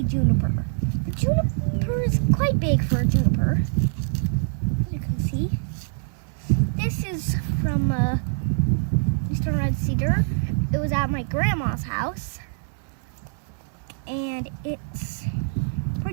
juniper. The juniper is quite big for a juniper. You can see. This is from eastern red cedar. It was at my grandma's house, and it's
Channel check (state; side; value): silent; left; digital silence